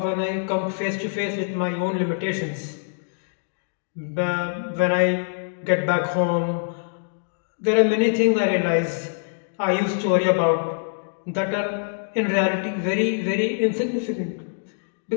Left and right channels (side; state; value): right; silent; digital silence